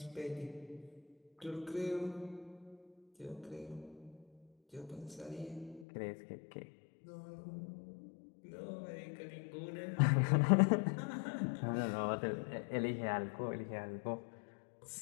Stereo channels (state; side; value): drops out; right; at 5.9 s